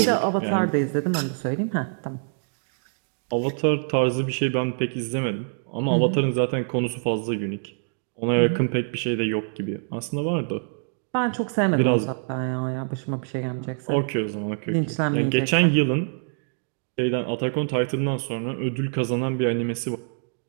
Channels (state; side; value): silent; left; 62 dB below the other